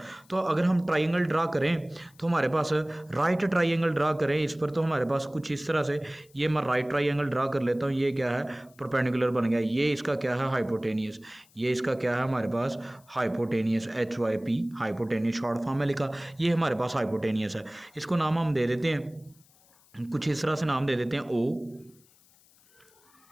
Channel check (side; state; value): left; noise; hiss, 30 dB below the sound